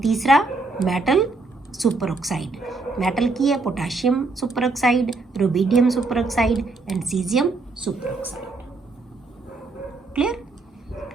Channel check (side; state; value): left; quieter; 3.5 dB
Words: ਮੈਟਲ ਸੁਪਰ ਆਕਸਾਈਡ। ਮੈਟਲ ਕੀ ਹੈ? Potassium super oxide, rubidium super oxide and caesium super oxide. Clear?